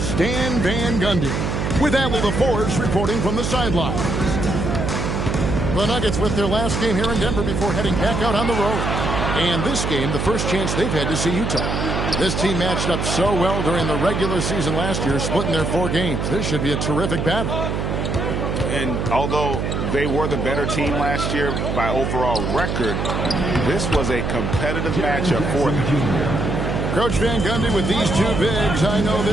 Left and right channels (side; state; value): right; noise; hum, 1 dB below the sound